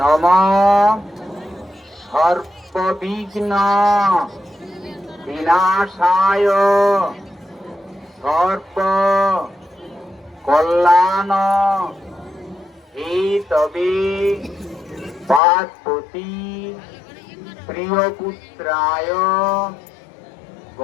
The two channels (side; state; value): right; drops out; at 15.4 s